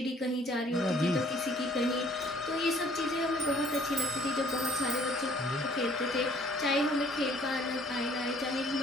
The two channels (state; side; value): normal; both; correlation 0.58